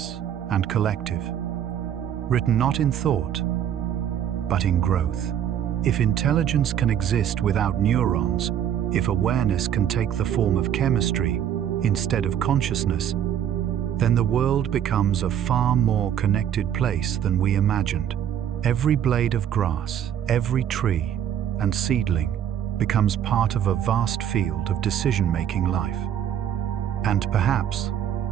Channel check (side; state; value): left; quieter; 9.7 dB